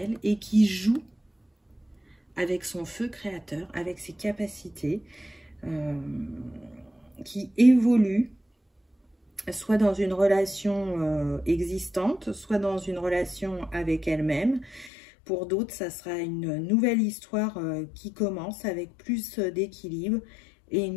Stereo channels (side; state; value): right; drops out; at 14.9 s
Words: et qui joue avec son feu créateur, avec ses capacités, qui évolue, soit dans une relation existante, soit dans une relation avec elle-même. Pour d'autres, ça sera une nouvelle histoire qui commence avec plus d'équilibre et une